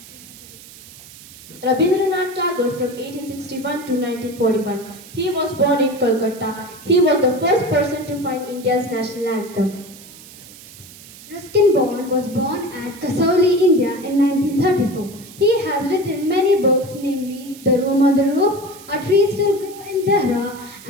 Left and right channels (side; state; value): right; noise; hiss, 19 dB below the sound